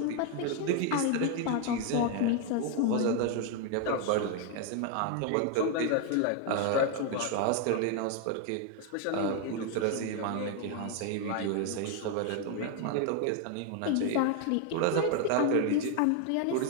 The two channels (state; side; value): different; both; correlation 0.01